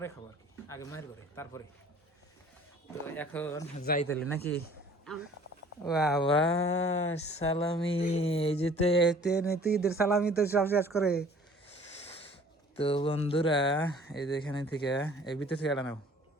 খাবো আর কি, আগে মায়ের ঘরে তারপরে। তো এখন যাই তাহলে নাকি। বাবা সালামি, এই যে তো ঈদের সালামি তো সব শেষ করে। তো বন্ধুরা, এই যে এখানে থেকে এই ভিতর থেকে এটা নাও,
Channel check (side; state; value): both; normal; correlation 0.51